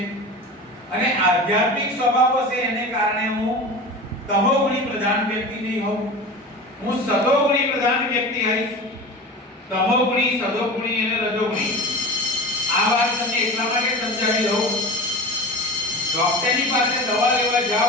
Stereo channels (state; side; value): normal; both; correlation 0.32